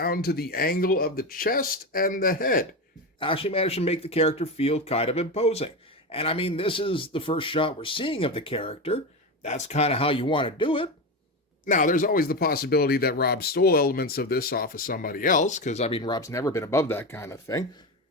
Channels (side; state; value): both; normal; correlation 0.18